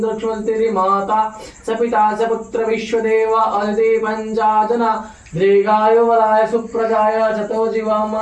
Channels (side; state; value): both; identical; correlation 1.00